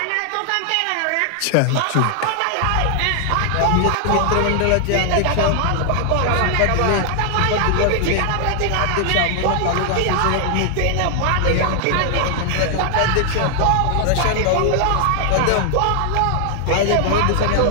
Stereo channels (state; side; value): different; both; correlation 0.00